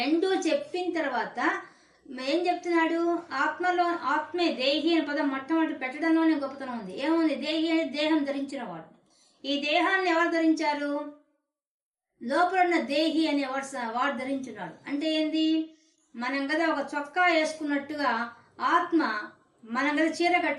చెప్పిన తర్వాత ఏం చెప్తున్నాడు, ఆత్మలో, ఆత్మే దేహి అనే పదం మొట్టమొదటి పెట్టడంలోనే గొప్పతనం ఉంది. ఏముంది, దేహి అంటే దేహం ధరించిన వాడు. ఈ దేహాన్ని ఎవరు ధరించారు, లోపల ఉన్న దేహి అనే వాడు ధరించున్నాడు. అంటే ఏంది, మనం కదా ఒక చొక్కా వేసుకున్నట్టుగా ఆత్మ, మనం కదా చీర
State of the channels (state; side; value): identical; both; correlation 1.00